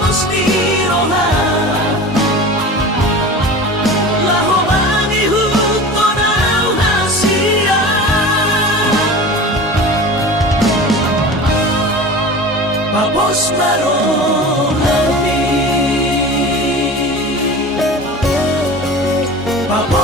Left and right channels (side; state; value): both; normal; correlation 0.35